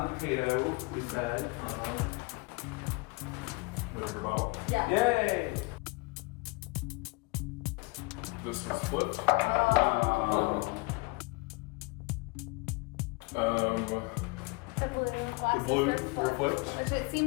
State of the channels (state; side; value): quieter; right; 26.6 dB